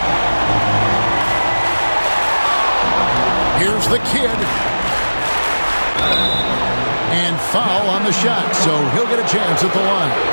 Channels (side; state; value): both; inverted; correlation -1.00